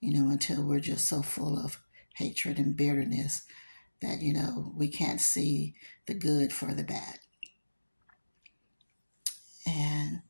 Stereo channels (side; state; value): both; inverted; correlation -1.00